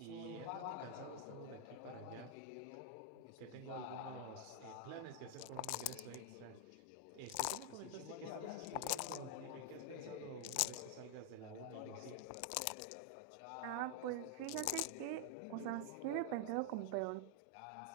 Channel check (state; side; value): different; both; correlation 0.00